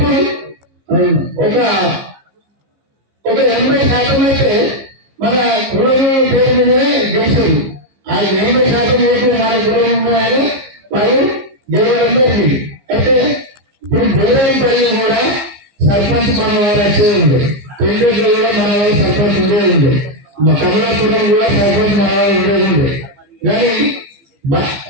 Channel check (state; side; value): late; left; 15 ms